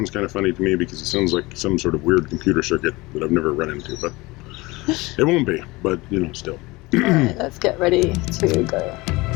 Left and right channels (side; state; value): right; quieter; 22.4 dB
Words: kind of funny to me because it sounds like some sort of weird computer circuit that I've never run into, but it won't be, but still. Alright, let's get ready to go.